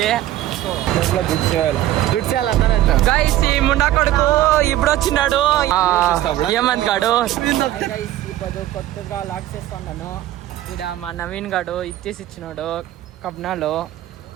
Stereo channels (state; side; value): quieter; left; 14.0 dB